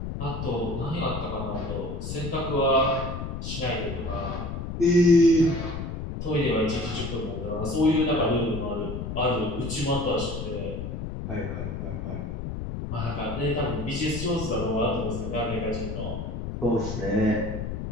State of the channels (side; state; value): left; noise; rumble, 5 dB below the sound